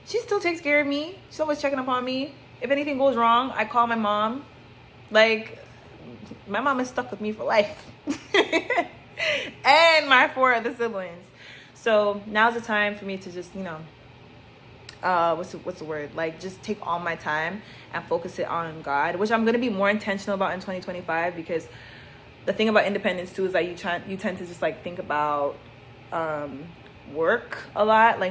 She still takes care of me. She's always checking up on me. If anything goes wrong, I call my mom. Like, my mom is stuck with me for life. And my 4 other siblings. So now's the time for me to just, you know, what's the word? Like, just take all my time and focus it on God, which I'm going to be more intentional about in 2025, because the thing about independence too is that you tend to just, like, think about work a lot,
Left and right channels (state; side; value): identical; both; correlation 1.00